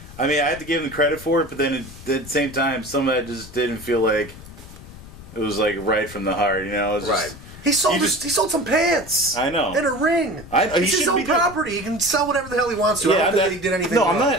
I mean, I have to give him credit for it, but then at the same time, some of that just didn't feel like it was like right from the heart, It was right. just, He sold some pants. I know. And a ring. It's his own property. He can sell whatever the hell he wants to. I don't think that he did anything wrong.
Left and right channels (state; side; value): noise; left; rumble, 17 dB below the sound